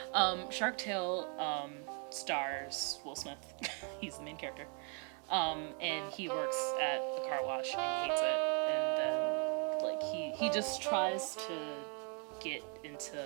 Shark Tale stars Will Smith. He's the main character, and he works at the car wash and he hates it. And then like He just tries to get into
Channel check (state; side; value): quieter; left; 38.5 dB